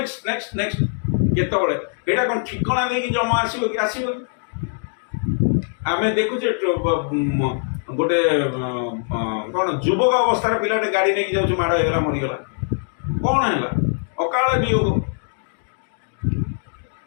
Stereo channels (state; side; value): silent; right; digital silence